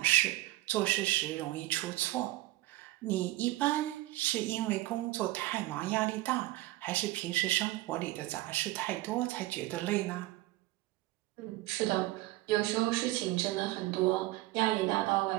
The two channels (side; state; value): left; quieter; 17.8 dB